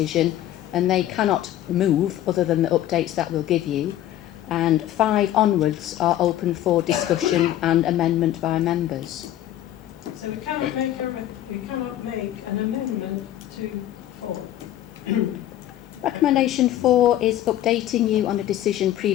and they cannot move other than the updates that we'll give you, and 5 onwards are open for discussion and amendment by members. So we cannot make an amendment to 4. Recommendation 4 is updating you on a decision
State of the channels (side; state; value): right; quieter; 12.8 dB